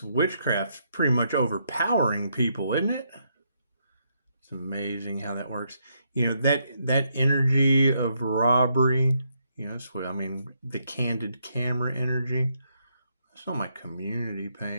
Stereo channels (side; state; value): both; inverted; correlation -0.76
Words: witchcraft's pretty much overpowering people, isn't it? It's amazing how that works. You know, that energy of robbery, that's what I mean, the candid camera energy. It's on my community